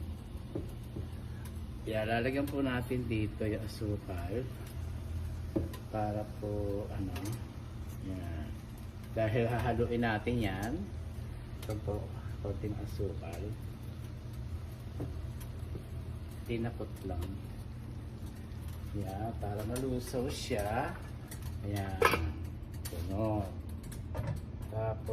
Yan, lalagyan po natin dito yung asukal para po yan. Dahil hahaluin natin yan. Ito po, konting asukal. Tinapot lang. Yan, para malusaw siya. Ayan. Ganon.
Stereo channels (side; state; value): both; identical; correlation 1.00